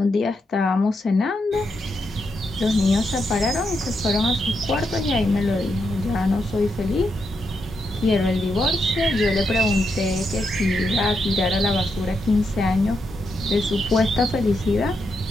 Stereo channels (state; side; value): normal; both; correlation 0.82